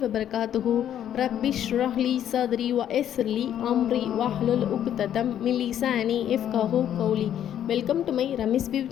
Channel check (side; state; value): right; quieter; 10.4 dB